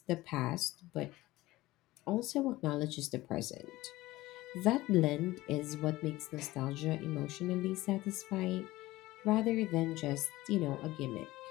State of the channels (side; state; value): right; quieter; 18.2 dB